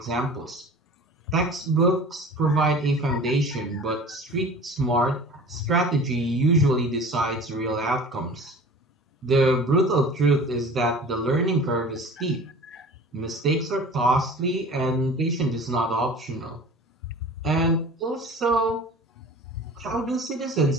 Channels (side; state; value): both; normal; correlation 0.41